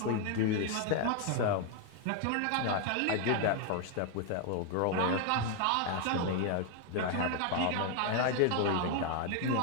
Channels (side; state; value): both; different; correlation 0.01